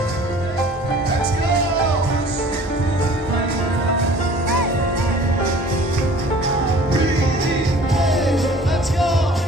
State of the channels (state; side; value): normal; both; correlation 0.49